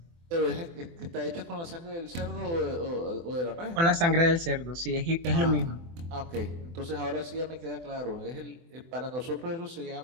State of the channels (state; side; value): late; left; 24 ms